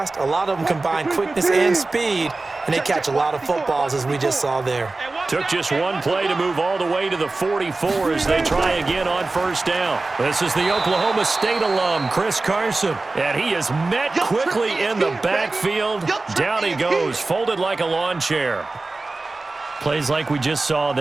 A lot of them combine quickness and speed, and they catch a lot of footballs, as we just saw there. Took just one play to move all the way to the 44 as they try again on first down. This is the Oklahoma State alum, Chris Carson. And he is met quickly in the backfield. Down he goes, folded like a lawn chair. Plays like we just saw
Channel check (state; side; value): quieter; left; 3.4 dB